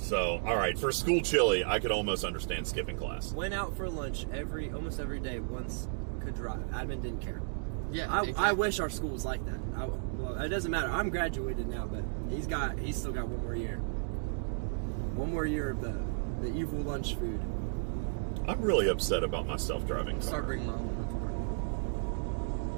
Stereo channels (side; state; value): left; silent; digital silence